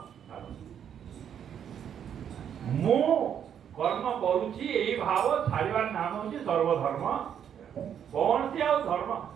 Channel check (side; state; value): left; quieter; 8.8 dB